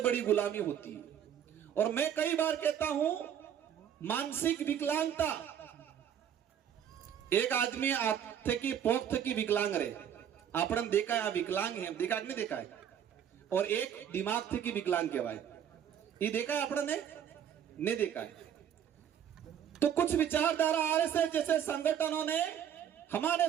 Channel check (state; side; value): quieter; left; 9.3 dB